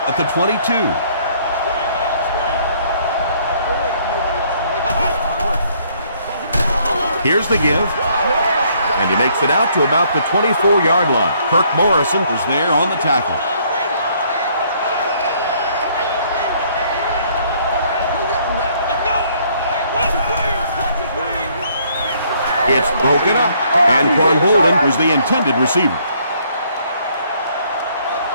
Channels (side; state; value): both; inverted; correlation -0.65